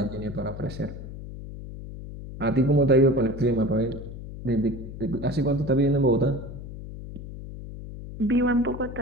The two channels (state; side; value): noise; left; hum, 11 dB below the sound